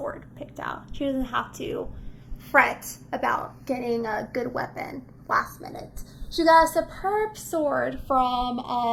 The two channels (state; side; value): identical; both; correlation 1.00